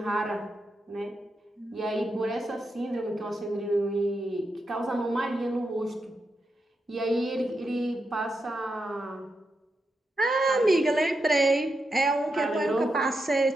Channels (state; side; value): normal; both; correlation 0.86